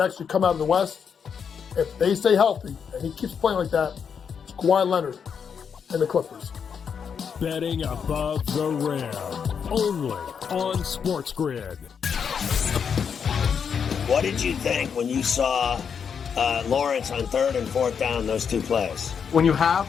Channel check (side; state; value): right; quieter; 6.9 dB